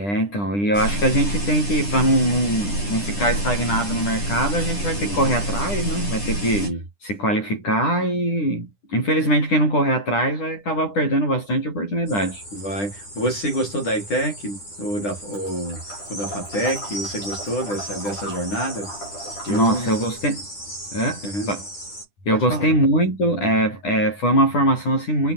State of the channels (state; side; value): late; right; 10 ms